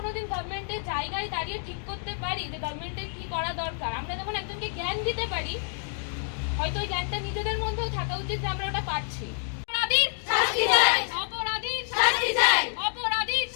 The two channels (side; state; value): right; silent; 59 dB below the other